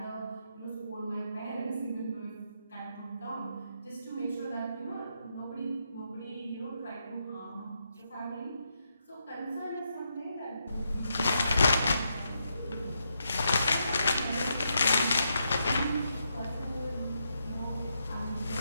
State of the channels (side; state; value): both; inverted; correlation -0.81